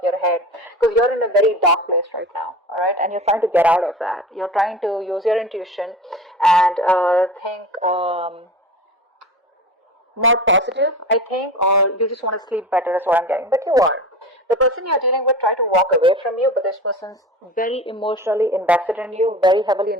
your head, because you're in a very dark place right now, all right? And you're trying to get out of that. You're trying to use your intuition and think more positive, I think, or you just want to sleep better, is what I'm getting. But you are. The person you're dealing with try to walk away from you, but this person's very emotionally invested in you, very heavily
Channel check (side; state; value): both; normal; correlation 0.33